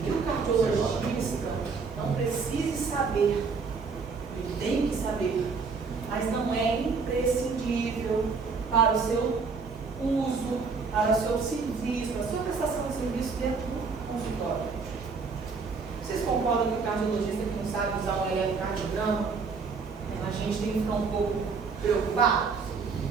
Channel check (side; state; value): left; quieter; 4.9 dB